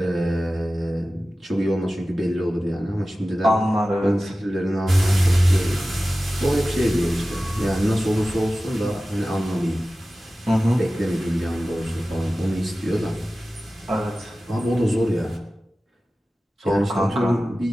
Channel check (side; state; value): both; normal; correlation 0.95